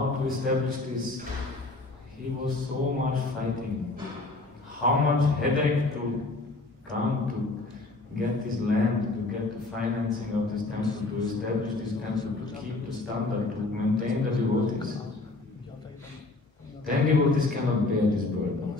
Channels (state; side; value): quieter; right; 3.2 dB